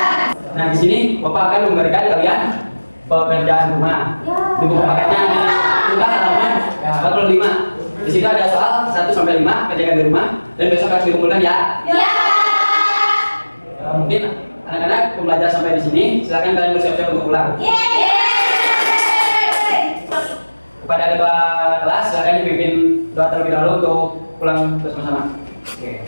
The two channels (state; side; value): inverted; both; correlation -1.00